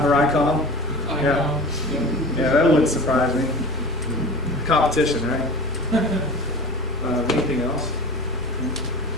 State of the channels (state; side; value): normal; both; correlation 0.36